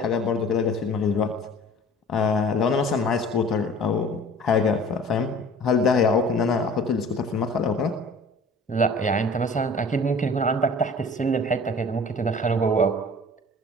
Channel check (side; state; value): both; normal; correlation 0.45